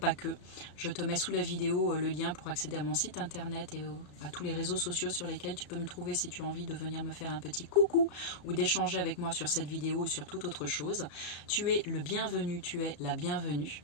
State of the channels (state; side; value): late; right; 34 ms